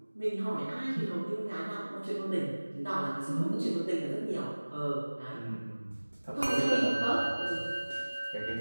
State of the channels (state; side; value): inverted; both; correlation -1.00